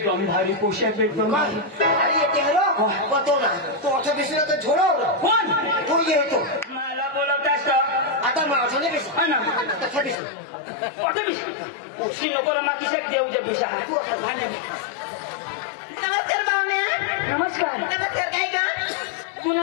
भारी पोशाख एकदम अरे येते हॅलो बतो ना तो असं दिसलं तर झोडव कोण तो येतो मला बोलवतास आता माझं नाही बेस हा ना तसा दिसत कुठे बिसा उशी नको रमा किशाक देऊच्या बिसा तू असं झाल्या नमस्कार पाहुण्या. नमस्कार नमस्कार काय का?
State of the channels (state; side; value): drops out; right; at 10.2 s